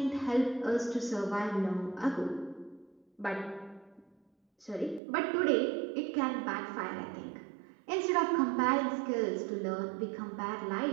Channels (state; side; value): drops out; left; at 5.0 s